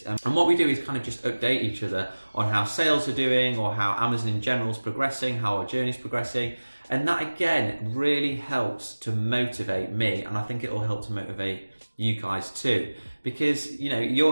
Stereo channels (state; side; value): inverted; both; correlation -1.00